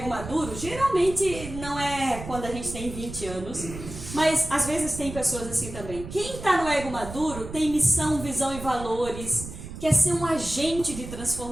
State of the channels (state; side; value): noise; right; rumble, 11 dB below the sound